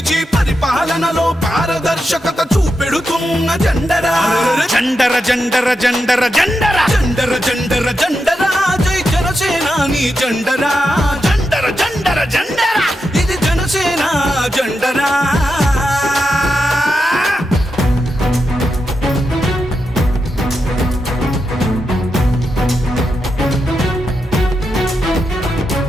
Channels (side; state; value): both; normal; correlation 0.87